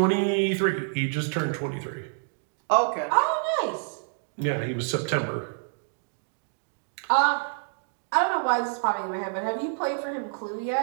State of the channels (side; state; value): left; silent; digital silence